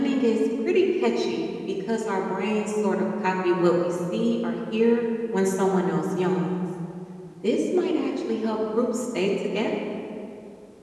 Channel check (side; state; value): both; identical; correlation 1.00